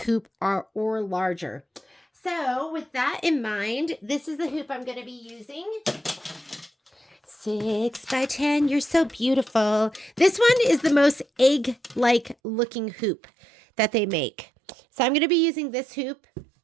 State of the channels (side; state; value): left; drops out; at 12.4 s